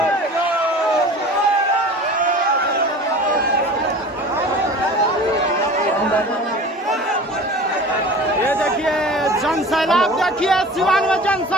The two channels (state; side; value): normal; both; correlation 0.39